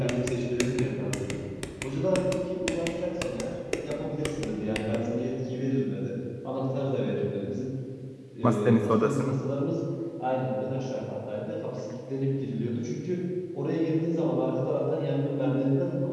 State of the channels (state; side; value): identical; both; correlation 1.00